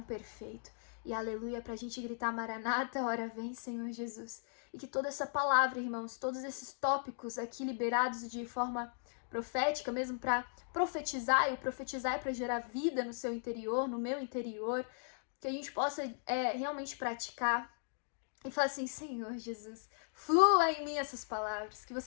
perfeito. E aleluia, para a gente gritar Maranata, ora vem, Senhor Jesus. E que toda essa palavra, irmãos, todos esses tópicos aqui liberados de forma profética, mesmo para profetizar, e o profetizar é para gerar vida no seu interior, no meu interior, que a gente possa realmente praticar e falar assim, Senhor Jesus, flua em mim essas palavras, que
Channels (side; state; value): right; silent; digital silence